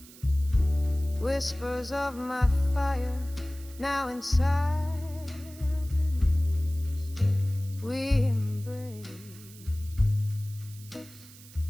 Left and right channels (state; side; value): noise; right; hiss, 20 dB below the sound